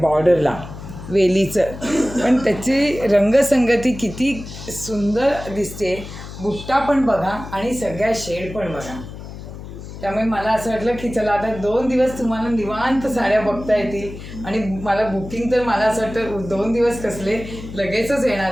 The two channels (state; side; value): noise; left; hum, 12 dB below the sound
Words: बॉर्डरला वेलीचं. पण त्याची रंगसंगती किती सुंदर दिसते. बुट्टा पण बघा आणि सगळ्या शेड पण बघा. त्यामुळे मला असं वाटलं की चला आता 2 दिवस तुम्हाला निवांत साड्या बघता येतील. आणि मला बुकिंग तर मला असं वाटतं 2 दिवस कसले, लगेचच येणार